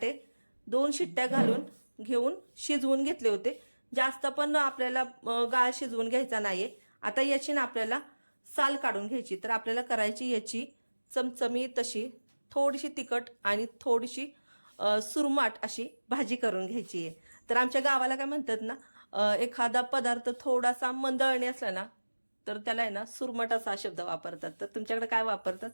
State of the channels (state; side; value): inverted; both; correlation -1.00